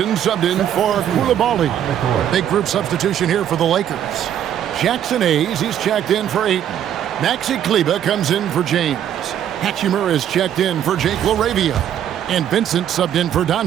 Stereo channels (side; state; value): left; quieter; 10.2 dB